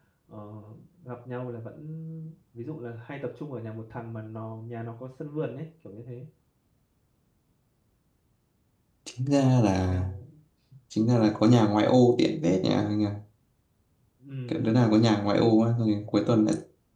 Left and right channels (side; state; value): both; identical; correlation 1.00